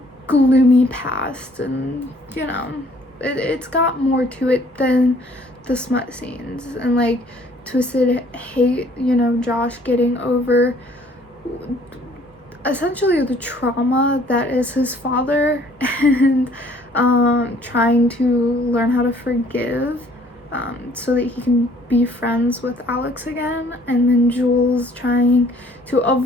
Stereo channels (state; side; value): normal; both; correlation 0.59